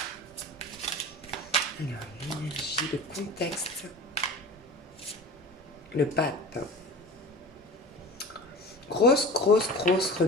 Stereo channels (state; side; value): normal; both; correlation 0.36